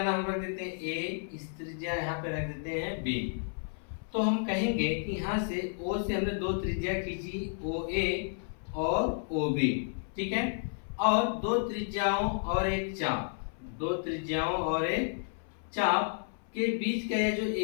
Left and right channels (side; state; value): right; silent; 57 dB below the other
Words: नाम रख देते हैं A, इस त्रिज्या यहाँ पे रख देते हैं B। तो हम कहेंगे कि यहाँ से O से हमने दो त्रिज्या खींची, OA और OB। ठीक है, और दो त्रिज्याओं और एक चाप, दो त्रिज्याओं और एक चाप के बीच का ये जो